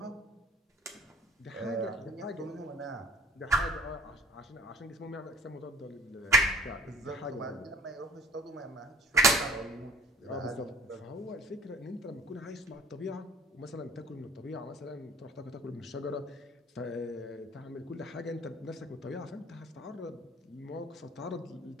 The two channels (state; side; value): normal; both; correlation 0.50